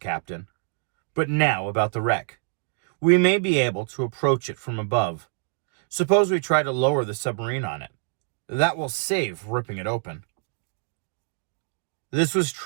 "But now about the wreck. We may be able to approach it from above. Suppose we try to lower the submarine on it. That will save ripping it open." This was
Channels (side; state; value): left; silent; 61 dB below the other